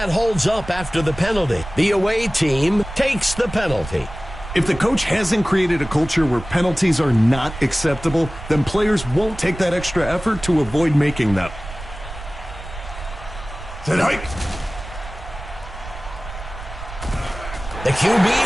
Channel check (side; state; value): right; noise; rumble, 12 dB below the sound